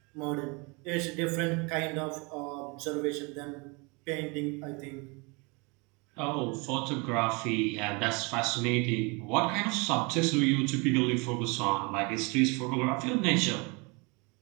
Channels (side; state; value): left; quieter; 29.4 dB